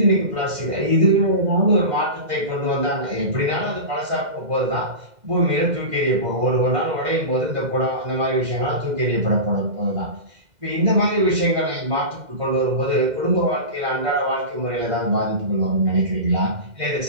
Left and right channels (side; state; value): left; late; 2.1 ms